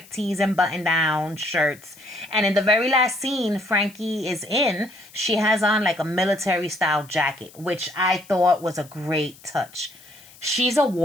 tees and button-down shirts. And in the very last scene Frankie is in, she has on like a military-style jacket, which I thought was a great touch. She's a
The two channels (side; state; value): left; noise; hiss, 23 dB below the sound